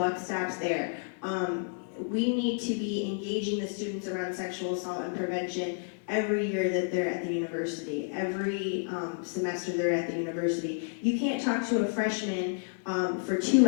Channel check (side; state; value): right; silent; digital silence